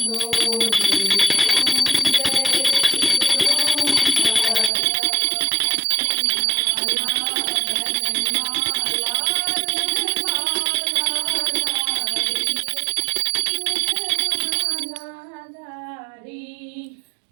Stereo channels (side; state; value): left; drops out; at 4.7 s